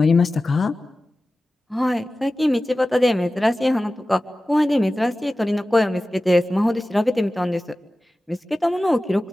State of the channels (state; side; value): normal; both; correlation 0.96